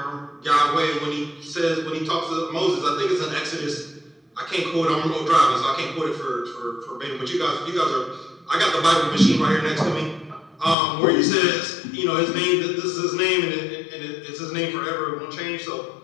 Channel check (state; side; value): drops out; right; at 10.8 s